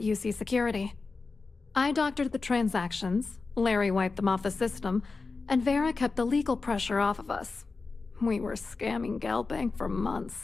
UC Security. I doctored the transactions, Larry wiped them off the system, and Vera kept the legal pressure off of us. We were scamming Galbank for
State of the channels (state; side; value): quieter; right; 4.1 dB